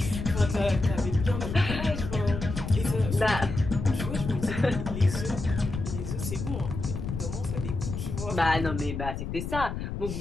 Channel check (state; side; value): noise; left; rumble, 5 dB below the sound